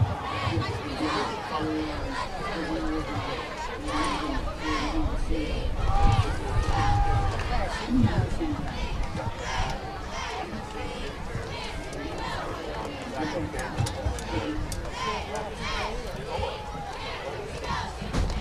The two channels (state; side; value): identical; both; correlation 1.00